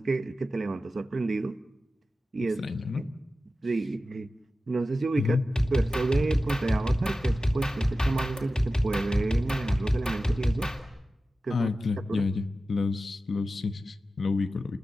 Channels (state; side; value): normal; both; correlation 0.94